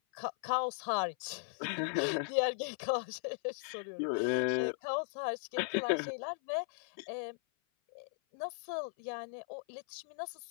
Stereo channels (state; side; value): silent; right; 53 dB below the other